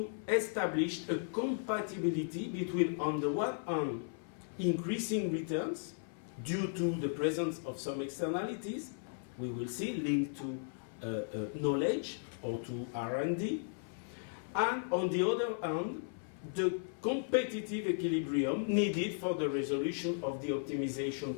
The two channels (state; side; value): silent; right; 54 dB below the other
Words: establish a compatibility between, on the one hand, increasing returns due to the presence of some externalities, we will see, linked to knowledge or to R&D, and on the other hand, the competitive equilibrium needed for the resolution of the optimization